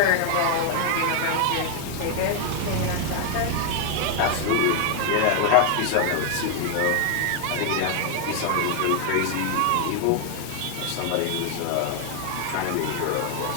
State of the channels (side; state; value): both; different; correlation 0.00